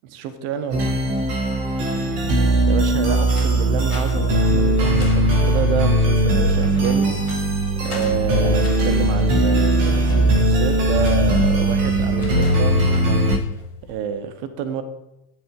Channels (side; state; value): left; late; 16 ms